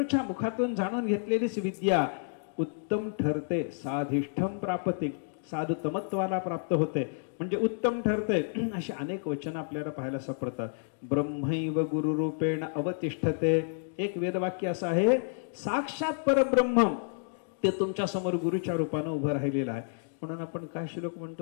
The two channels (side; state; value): right; silent; digital silence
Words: मुखातून जाणून घेतलेलीच विद्या उत्तम ठरते. साधिष्ठम प्राप्ते, साधुतमत्वाला प्राप्त होते म्हणजे उत्तम ठरते. अशी अनेक वचन आपल्याला पाहायला सापडतात. ब्रह्मैव गुरुरूपेण अवतिष्ठते. एक वेदवाक्य असं आहे, साक्षात परब्रह्म ते तुमच्या समोर गुरुच्या रूपाने उभं राहिलेलं आहे. म्हणून आपण काय श्लोक